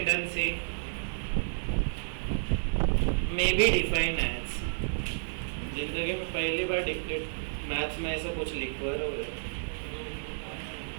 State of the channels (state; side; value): silent; left; digital silence